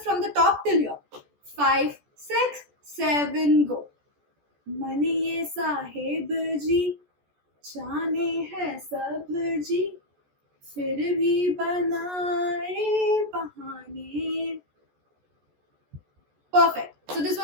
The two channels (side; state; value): left; late; 14 ms